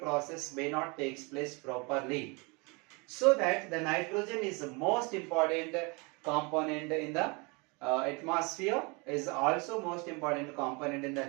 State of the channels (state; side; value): quieter; left; 29.4 dB